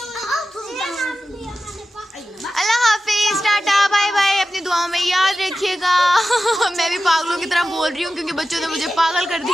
अल्लाह हाफिज, टाटा बाय बाय, अपनी दुआओं में याद रखिएगा। मैं भी पागलों की तरह बोल रही हूँ क्योंकि बच्चों ने मुझे पागल कर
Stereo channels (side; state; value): both; normal; correlation 0.93